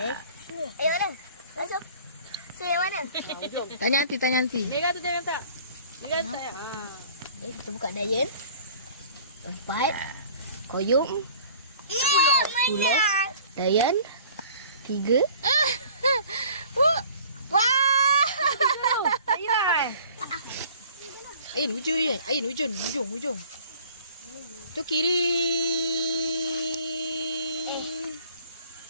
mana? Masuk. Saya mana? Tanya nanti. Mega tu jangan tak. Mega tak ya. Kita buka dayan. 4 koyum. 10 dayan. 3. Wah. Ayun ujung. Ayun ujung. Tu kiri.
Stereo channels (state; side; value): inverted; both; correlation -0.49